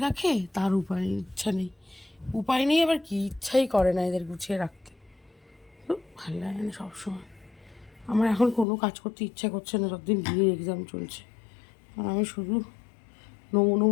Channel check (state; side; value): drops out; right; at 8.7 s